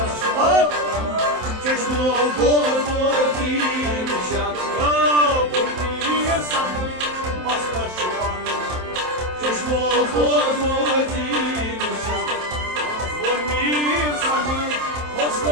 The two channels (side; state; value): left; late; 27 ms